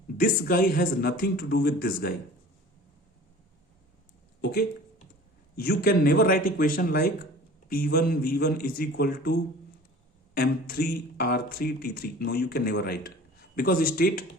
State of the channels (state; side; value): normal; both; correlation 0.43